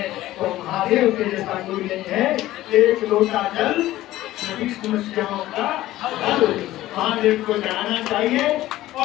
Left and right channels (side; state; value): right; quieter; 15.4 dB